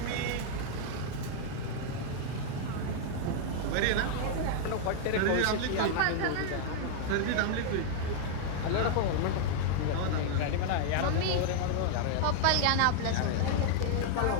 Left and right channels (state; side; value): different; both; correlation 0.00